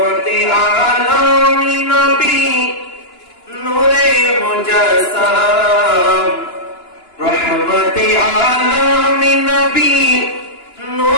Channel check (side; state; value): right; late; 2.9 ms